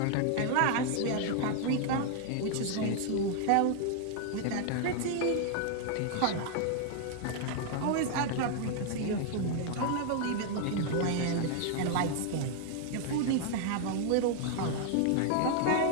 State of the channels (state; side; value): different; both; correlation 0.00